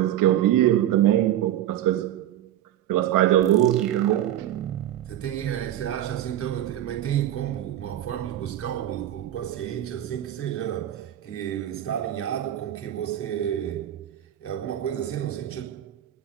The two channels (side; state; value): left; quieter; 12.1 dB